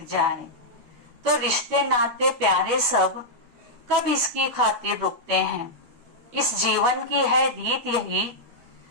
जाए, तो रिश्ते नाते प्यारे सब कब इसकी खातिर रुकते हैं। इस जीवन की है रीत यही,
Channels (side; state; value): left; late; 12 ms